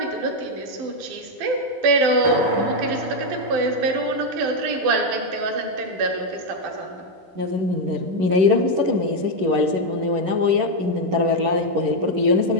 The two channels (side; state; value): left; late; 11 ms